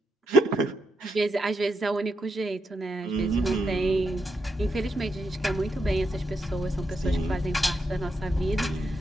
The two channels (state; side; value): normal; both; correlation 0.82